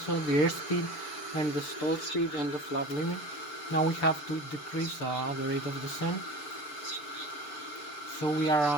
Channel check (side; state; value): right; late; 6.9 ms